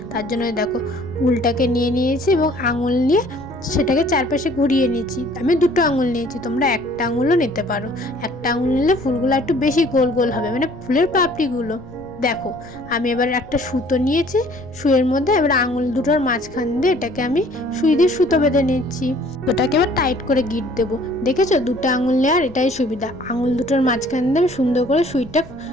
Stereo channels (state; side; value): noise; left; rumble, 21 dB below the sound